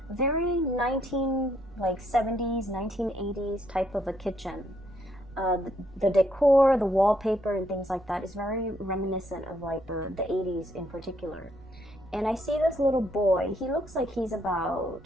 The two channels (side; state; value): right; noise; rumble, 22 dB below the sound